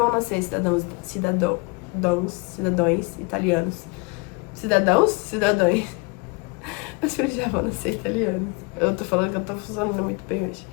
nascer cidadãos italianos. Cidadãos? Cidadãos. Meus filhos já vão nascer italianos. Eu tô falando que eu tô funcionando muito bem hoje.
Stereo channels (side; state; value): right; quieter; 28.7 dB